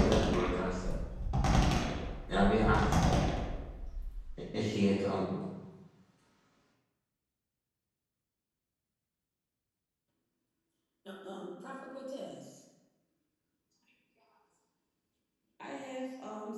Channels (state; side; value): identical; both; correlation 1.00